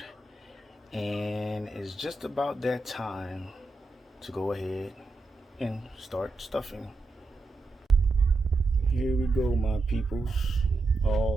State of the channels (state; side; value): quieter; left; 3.3 dB